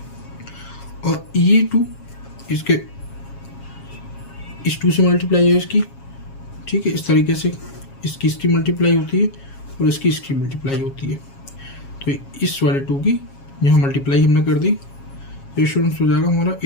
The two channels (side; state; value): right; late; 7.3 ms